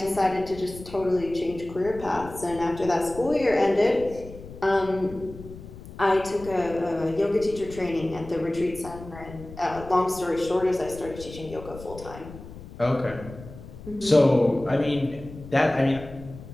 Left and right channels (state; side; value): noise; left; rumble, 15 dB below the sound